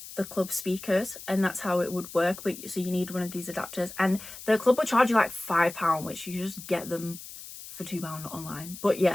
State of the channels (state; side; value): noise; left; hiss, 13 dB below the sound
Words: the club speakers, and that's how it would work. But so you need one of these adapters, and the club would charge you like £5, which you just get them for £2 online. But